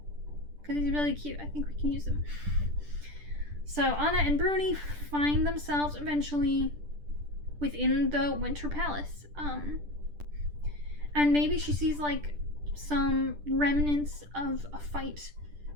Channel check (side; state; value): left; late; 10 ms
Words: because he's really cute. I think we can use him. So Anna and Bruni find themselves eventually within the Winter Palace. And maybe she sees like some remnants of a fight